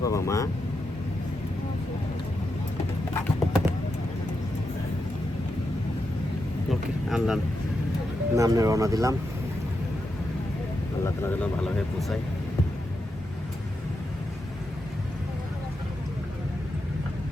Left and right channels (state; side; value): normal; both; correlation 0.86